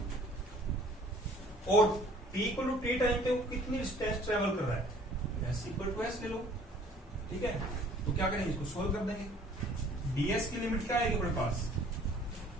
और t equal to t time पे वो कितनी डिस्टेंस ट्रेवल कर रहा है, s इक्वल टू s ले लो। ठीक है, तो क्या करेंगे, इसको सोल्व कर देंगे। ds की लिमिट क्या आएगी अपने पास,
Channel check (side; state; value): both; normal; correlation 0.54